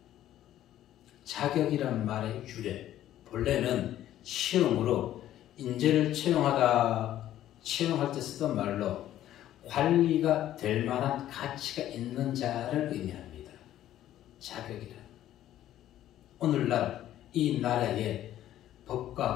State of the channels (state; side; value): quieter; right; 12.6 dB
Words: 자격이란 말의 유래, 본래는 채용으로 인재를 채용할 때 쓰던 말로 관리가 될 만한 가치가 있는 자를 의미합니다. 자격이란. 오늘날 이 나라의